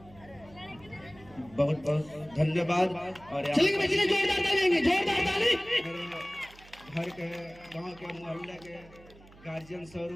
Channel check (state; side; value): noise; right; hum, 23 dB below the sound